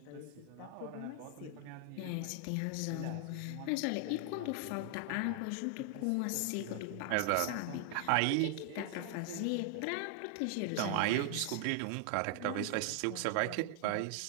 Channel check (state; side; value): different; both; correlation 0.00